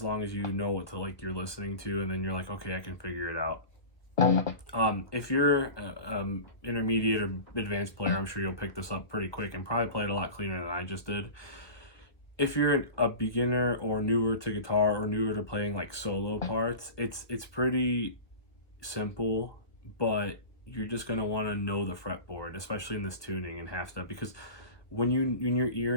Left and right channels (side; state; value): right; late; 1.1 ms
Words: long as you know what to like you're listening to, and then you're like, okay, I can figure it out. If you're intermediate or advanced player, I'm sure you'll pick this up pretty quick and probably play it a lot cleaner than I just did. If you're a beginner or newer to guitar or newer to playing like solo parts, it's pretty simple, but you're just gonna want to know the fretboard, especially in this tuning and half step, because when your ear